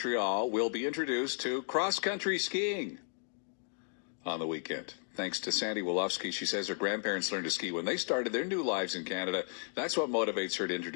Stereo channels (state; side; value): silent; right; digital silence